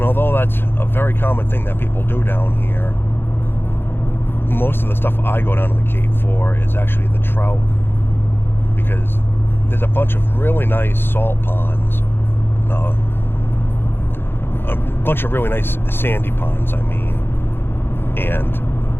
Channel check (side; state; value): right; late; 0.10 ms